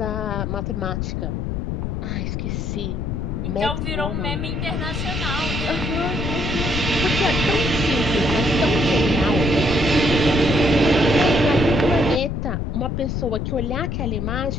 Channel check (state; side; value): noise; left; rumble, 2 dB below the sound